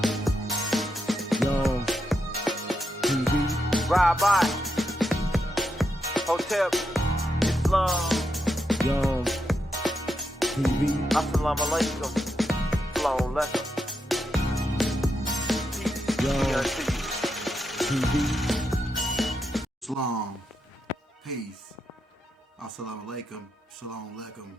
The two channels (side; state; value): both; normal; correlation 0.83